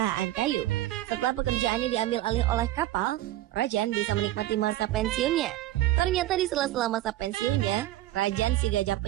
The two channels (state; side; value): quieter; left; 15.1 dB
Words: kayu. Setelah pekerjaannya diambil alih oleh kapal, Rajan bisa menikmati masa pensiunnya. Ternyata di sela-sela masa pensiunnya, Rajan si gajah